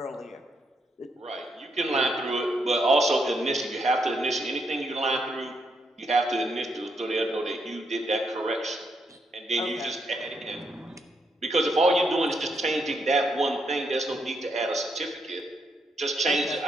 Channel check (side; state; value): both; normal; correlation 0.78